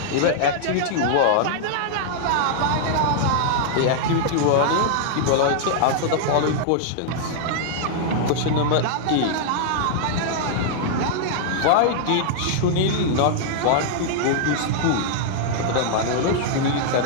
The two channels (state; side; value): different; both; correlation -0.01